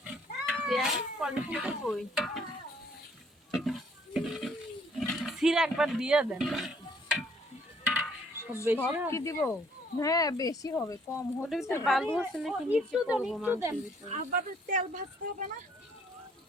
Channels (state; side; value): normal; both; correlation 0.63